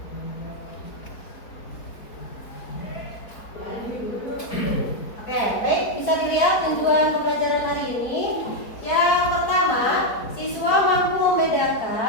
Oke, baik, bisa dilihat tujuan pembelajaran hari ini. Yang pertama, siswa mampu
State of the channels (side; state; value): right; late; 4.3 ms